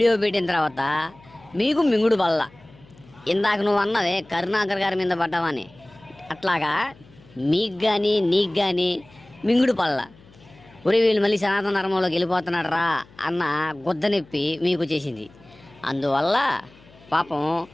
పెట్టిన తర్వాత మీకు మింగుడు బల్ల. ఇందాక నువ్వు అన్నవే కరుణాకర్ గారి మీద పడ్డావని, అట్లాగా మీకు కానీ నీకు కానీ మింగుడు పల్ల. ఉరి వీళ్ళు మళ్ళీ సనాతన ధర్మంలోకి వెళ్ళిపోతున్నాడు రా అన్న గుద్ద నొప్పి మీకు చేసింది. అందువల్ల పాపం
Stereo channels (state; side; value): noise; left; hum, 25 dB below the sound